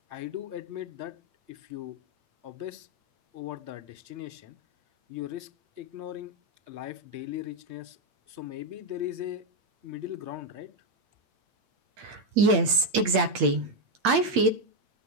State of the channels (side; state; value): left; late; 8.7 ms